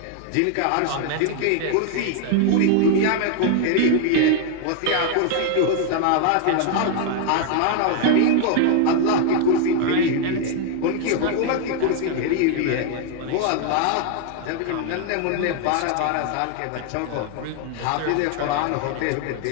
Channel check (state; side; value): different; both; correlation 0.00